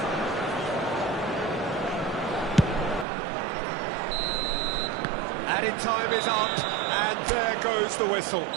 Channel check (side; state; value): left; drops out; at 3.1 s